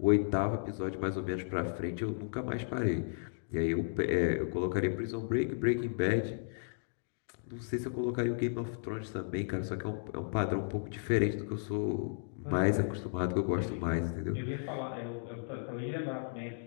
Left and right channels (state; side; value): silent; right; digital silence